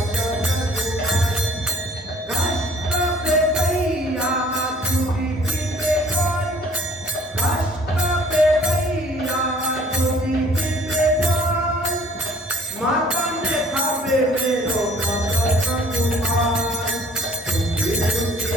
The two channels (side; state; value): both; normal; correlation 0.55